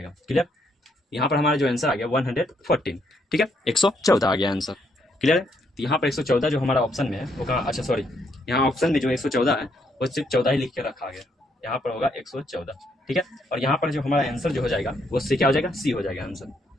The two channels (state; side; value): normal; both; correlation 0.73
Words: क्लियर, यहाँ पर हमारा जो आंसर आ गया 114। ठीक है, 114 आ गया आंसर। क्लियर है, तो यहाँ पर 114 जो हमारा ऑप्शन में है वो कहाँ, अच्छा सॉरी, यहाँ ऑप्शन में जो 114 है वो सिर्फ 14 ही लिख के रखा गया, यहाँ पर होगा 114। ठीक है, और यहाँ पर जो हमारा आंसर जो हो जाएगा वो सी क्या हो जाएगा, सी हो जाएगा आंसर।